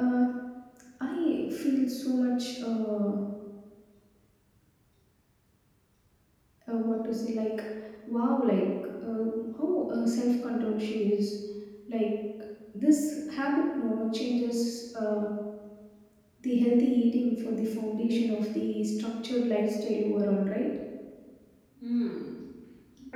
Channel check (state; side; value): identical; both; correlation 1.00